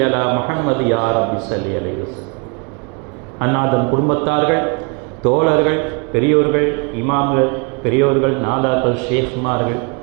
அலா முஹம்மது யா ரப்பி ஸல்லி அலைஹி வஸல்லம். அன்னாதம் குடும்பத்தார்கள், தோழர்கள், பெரியோர்கள், இமாம்கள், பெரியோர்கள், நாதாக்கள், ஷேக்மார்கள்,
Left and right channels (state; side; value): quieter; left; 32.7 dB